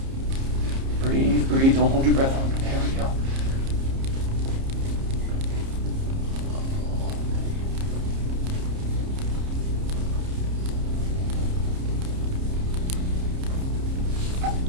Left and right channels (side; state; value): left; late; 30 ms